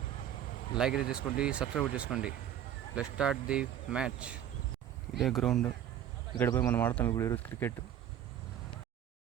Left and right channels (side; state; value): left; quieter; 10.4 dB